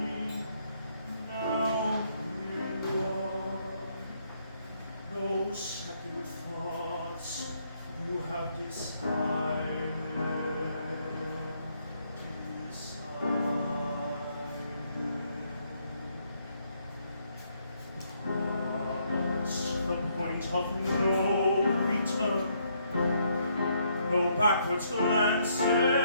Now here you are. No second thoughts, you have decided. Past the point of no return, no backwards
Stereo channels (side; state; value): both; inverted; correlation -0.72